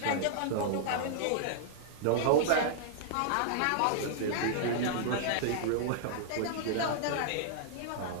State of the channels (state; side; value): different; both; correlation -0.01